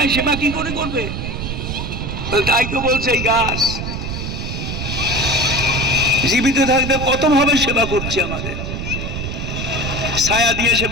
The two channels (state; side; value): noise; right; rumble, 5 dB below the sound